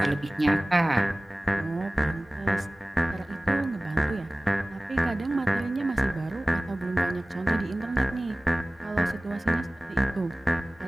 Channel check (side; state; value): both; normal; correlation 0.98